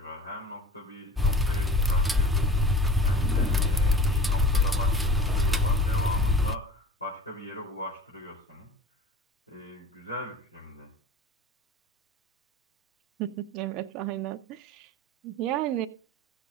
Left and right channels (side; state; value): both; normal; correlation 0.40